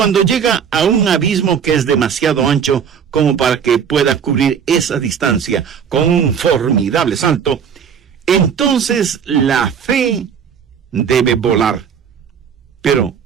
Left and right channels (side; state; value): left; quieter; 7.5 dB